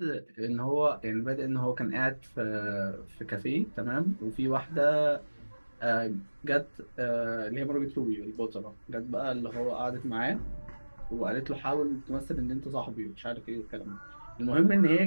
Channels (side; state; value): both; inverted; correlation -1.00